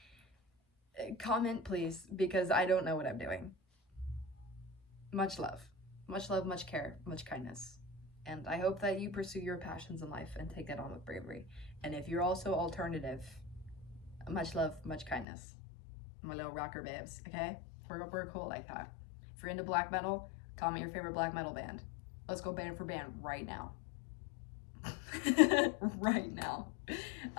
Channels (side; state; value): right; drops out; at 15.2 s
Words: comment please, because I don't know what I'm doing. Much love, much care, much kindness. And I hope that you pursue your passions in life and take that on with bravery. And if you're also alternative, much love, much kindness. My little rocker babes, okay? We're cool like that. If you're into black metal, comment your favorite black metal band. Let's go band for band right now. Right now.